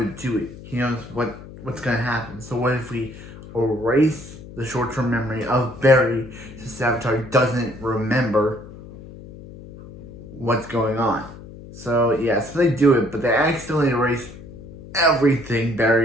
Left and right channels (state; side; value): noise; left; hum, 16 dB below the sound